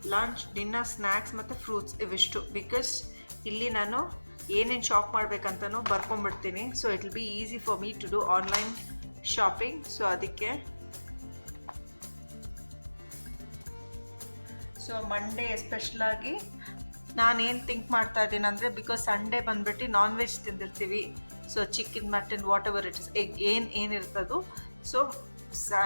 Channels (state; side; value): inverted; both; correlation -1.00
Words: ಲಂಚ್, ಡಿನ್ನರ್, ಸ್ನ್ಯಾಕ್ಸ್ ಮತ್ತು ಫ್ರೂಟ್ಸ್ ಇವಿಷ್ಟು. ಬಿಕಾಸ್ ಇಲ್ಲಿ ನಾನು ಏನೇನು ಶಾಪ್ ಮಾಡಬೇಕಂತನೂ ಬರ್ಕೊಂಬಿಡ್ತೀನಿ. So it will be easy for me to do online shopping. So ಅದಕ್ಕೆ ಸೊ ಮಂಡೇ ಎಸ್ಪೆಷಲಾಗಿ ನಾನೇನು ಥಿಂಕ್ ಮಾಡ್ತಾ ಇದ್ದೀನಿ ಅಂದರೆ, ಬಿಕಾಸ್ ಸಂಡೇ ಬಂದುಬಿಟ್ಟು ನಾನ್ ವೆಜ್ ತಿಂದಿರ್ತೀವಿ, so chicken mutton what ever it is egg ಏನಿರ್ತದೋ. ಸೊ